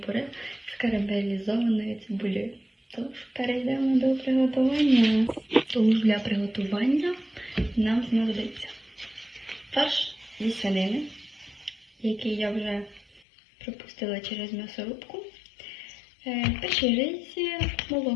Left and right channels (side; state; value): right; drops out; at 13.2 s